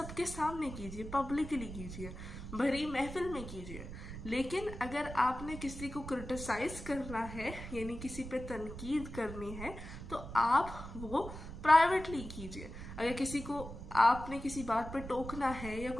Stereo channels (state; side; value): noise; right; rumble, 10 dB below the sound